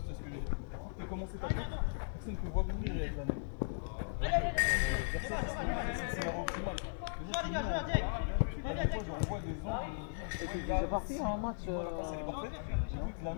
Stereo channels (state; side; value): silent; right; digital silence